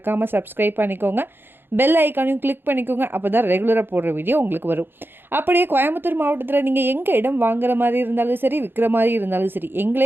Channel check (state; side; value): late; left; 0.10 ms